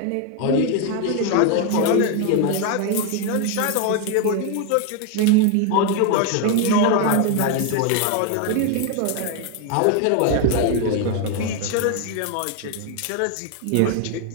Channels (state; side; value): different; both; correlation 0.01